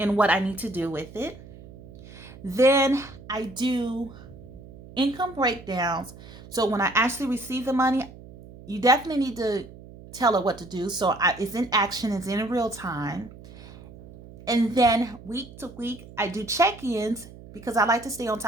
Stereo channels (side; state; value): right; noise; hum, 18 dB below the sound